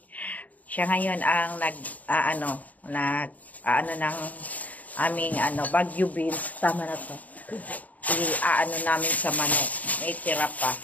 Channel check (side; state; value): right; late; 0.074 ms